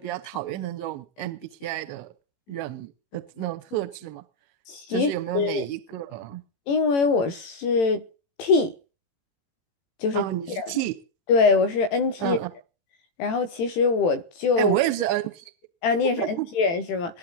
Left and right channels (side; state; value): right; late; 18 ms